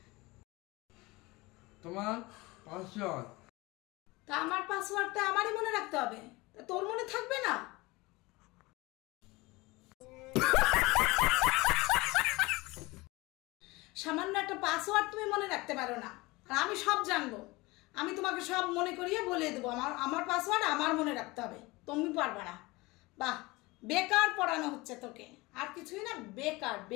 তোমার পাসওয়ার্ড। তা আমার পাসওয়ার্ডটা আমারই মনে রাখতে হবে, তা তোর মনে থাকবে না? সামান্য একটা পাসওয়ার্ড তুমি মনে রাখতে পারো না, আর আমি সব জানবো। আমি তোমাকে সব মনে করিয়ে বলে দেবো আমার পাসওয়ার্ড আমার মনে রাখতে হবে, তুমি পারবে না। বাহ, বেকার পড়ানো হচ্ছে তোকে, আর কিছুই না, বেকার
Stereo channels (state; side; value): quieter; right; 22.5 dB